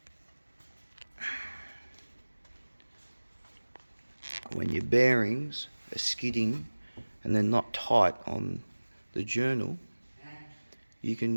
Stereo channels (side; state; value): both; inverted; correlation -1.00